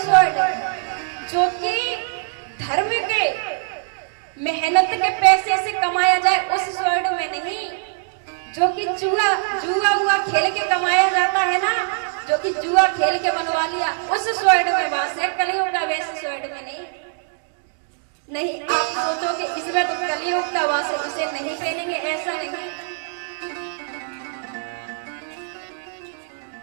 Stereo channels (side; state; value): left; silent; 62 dB below the other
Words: स्वर्ग, जो कि धर्म के मेहनत के पैसे से कमाया जाए उस स्वर्ग में नहीं, जो कि जुआ खेल के कमाया जाता है ना, जो कि जुआ खेल के बनवा लिया उस स्वर्ग में वास है, कलियुग का वैसे स्वर्ग में नहीं, आप सोचो कि इसमें तो कलयुग का वास है, इसे नहीं पहनेंगे, ऐसा नहीं।